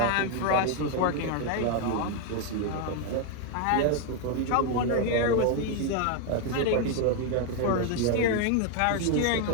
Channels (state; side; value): different; both; correlation 0.01